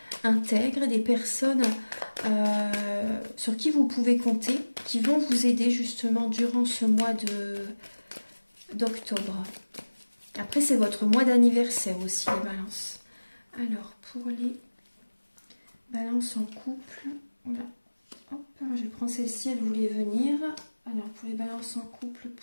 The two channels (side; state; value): both; inverted; correlation -1.00